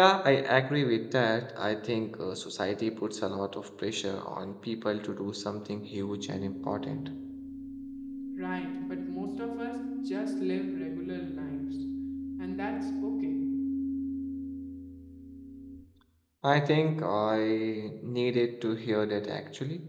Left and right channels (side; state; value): both; identical; correlation 1.00